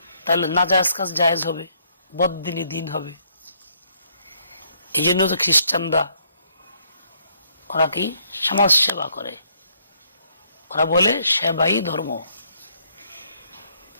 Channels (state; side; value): inverted; both; correlation -0.69